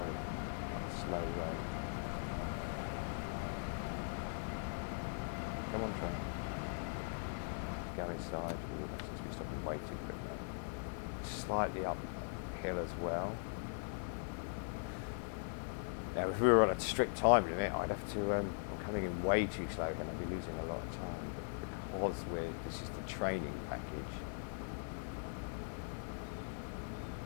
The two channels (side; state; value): right; silent; 51 dB below the other